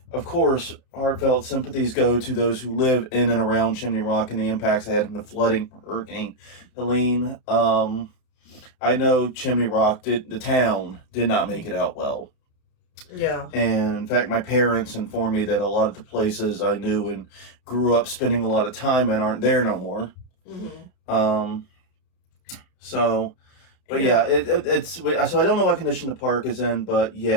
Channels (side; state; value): right; late; 33 ms